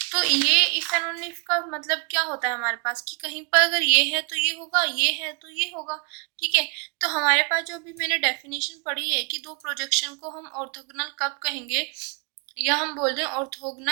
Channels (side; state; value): left; quieter; 32.1 dB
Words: तो ये इफ एंड ओनली इफ का मतलब क्या होता है हमारे पास कि कहीं पर अगर ये है तो ये होगा, ये है तो ये होगा। ठीक है, तो हमारे पास जो अभी मैंने डेफिनेशन पढ़ी है कि दो प्रोजेक्शन को हम ऑर्थोगोनल कब कहेंगे, या हम बोल रहे हैं